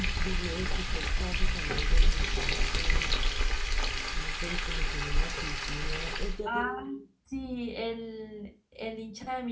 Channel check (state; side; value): identical; both; correlation 1.00